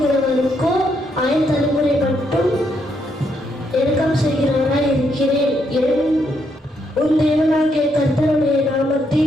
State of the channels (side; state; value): both; normal; correlation 0.76